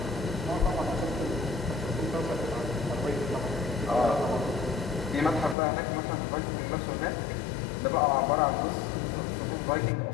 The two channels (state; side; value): drops out; right; at 5.6 s